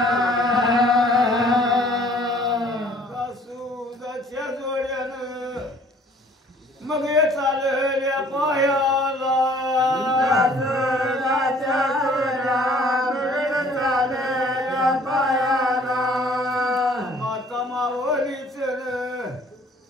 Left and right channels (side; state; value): both; normal; correlation 0.56